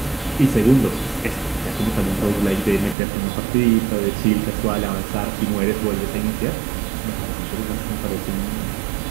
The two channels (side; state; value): left; drops out; at 3.0 s